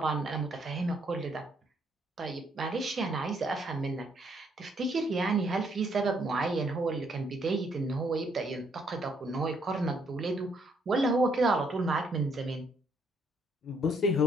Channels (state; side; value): normal; both; correlation 0.70